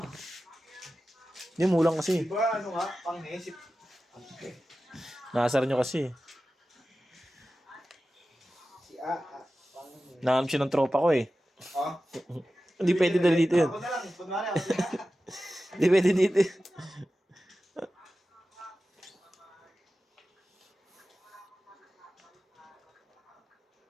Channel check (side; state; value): both; normal; correlation 0.94